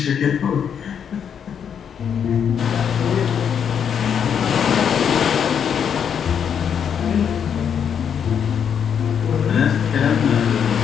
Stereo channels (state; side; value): quieter; right; 7.8 dB